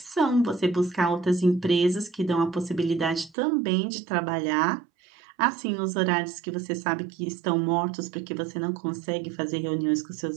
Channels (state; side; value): drops out; left; at 3.4 s